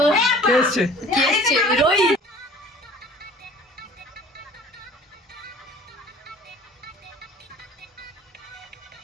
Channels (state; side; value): normal; both; correlation 0.47